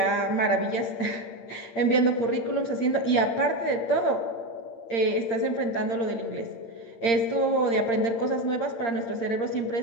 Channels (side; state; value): right; late; 8.7 ms